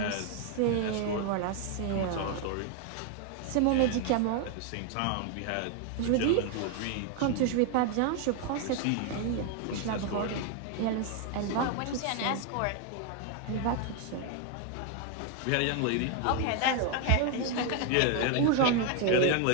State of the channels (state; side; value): different; both; correlation 0.01